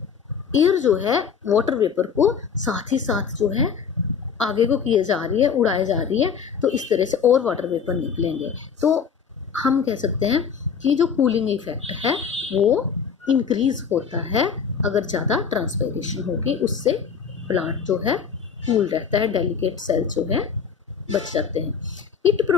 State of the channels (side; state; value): right; quieter; 6.6 dB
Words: एयर जो है वाटर वेपर को साथ ही साथ जो है आगे को किए जा रही है, उड़ाई जा रही है, तो इस तरह से और वाटर वेपर निकलेंगे। तो हम कह सकते हैं कि जो कूलिंग इफेक्ट है वो इंक्रीज होता है अगर ज़्यादा ट्रांसपायरेशन होगी, उससे प्लांट जो है कूल रहता है, डेलिकेट सेल्स जो है बच जाते हैं। It